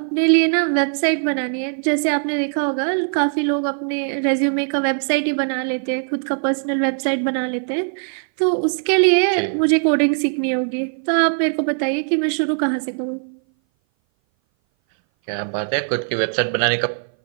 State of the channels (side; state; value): left; silent; 59 dB below the other